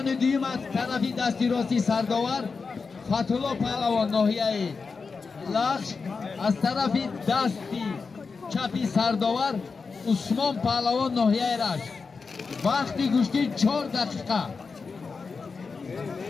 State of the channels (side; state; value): right; quieter; 4.8 dB